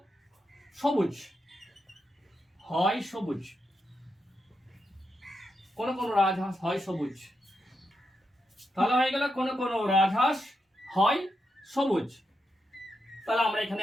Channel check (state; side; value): normal; both; correlation 0.85